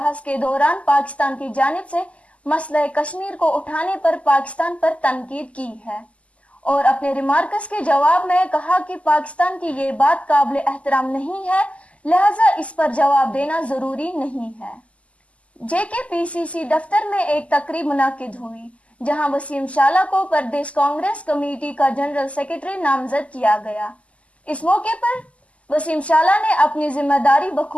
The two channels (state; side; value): late; right; 0.064 ms